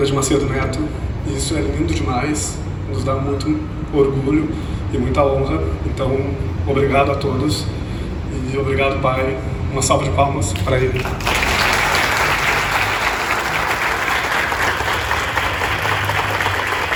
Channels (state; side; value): identical; both; correlation 1.00